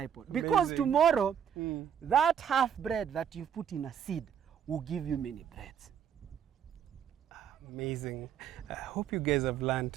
pot. Because tomorrow, that half bread that you put in a seed will give you many breads. Amazing. I hope you guys have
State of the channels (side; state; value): left; quieter; 8.5 dB